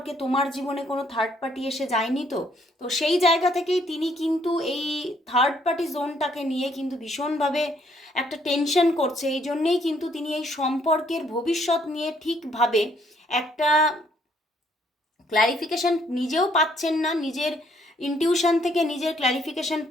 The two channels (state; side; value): normal; both; correlation 0.67